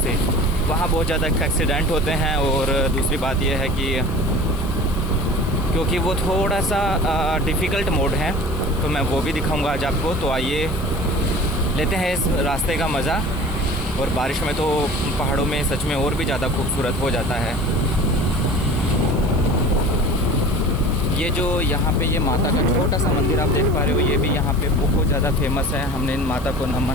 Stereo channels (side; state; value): left; noise; hiss, 21 dB below the sound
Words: वहाँ बहुत ज़्यादा एक्सीडेंट होते हैं और दूसरी बात यह है कि क्योंकि वो थोड़ा सा डिफ़िकल्ट मोड है, तो मैं वो भी दिखाऊंगा आज आपको। तो आइए लेते हैं इस रास्ते का मज़ा। और बारिश में तो पहाड़ों में सच में और भी ज़्यादा खूबसूरत हो जाता है। ये जो यहाँ पे ये माता का छोटा सा मंदिर आप देख पा रहे हो, ये भी यहाँ पे बहुत ज़्यादा फेमस है। हमने इन माता को